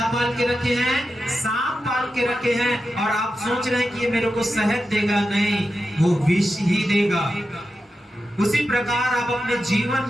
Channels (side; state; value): both; normal; correlation 0.90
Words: पाल के रखे हैं? सांप पाल के रखे हैं और आप सोच रहे हैं कि ये मेरे को शहद देगा, नहीं, वो विष ही देगा। उसी प्रकार आप अपने जीवन